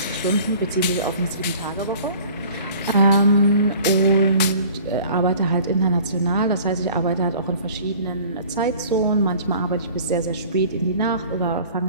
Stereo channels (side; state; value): both; inverted; correlation -0.48